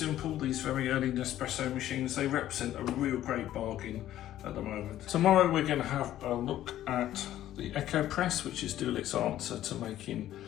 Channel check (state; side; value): quieter; right; 12.9 dB